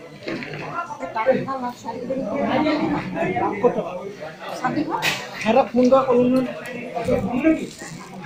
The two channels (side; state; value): both; identical; correlation 1.00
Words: হেৰা ফোন কৰা কলো